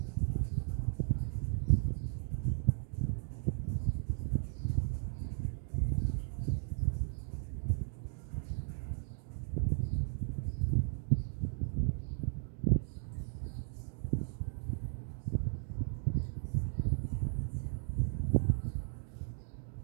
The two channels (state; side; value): silent; left; digital silence